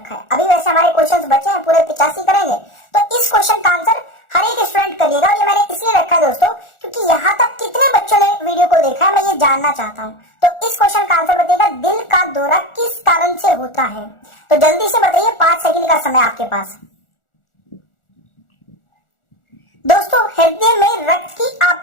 है, अभी वैसे हमारे क्वेश्चंस बचे हैं पूरे 85 करेंगे, तो इस क्वेश्चन का आंसर हर एक स्टूडेंट करिएगा। और ये मैंने इसलिए रखा है दोस्तों क्योंकि यहाँ तक कितने बच्चों ने वीडियो को देखा है मैं ये जानना चाहता हूँ। तो इस क्वेश्चन का आंसर बताइएगा दिल का दौरा किस कारण से होता है? तो जल्दी से बताइए, 5 सेकंड का समय आपके पास। दोस्तों हृदय में रक्त की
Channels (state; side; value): late; right; 1.4 ms